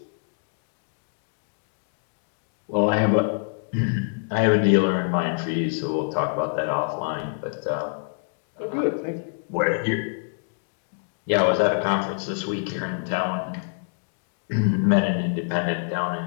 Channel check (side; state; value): right; silent; digital silence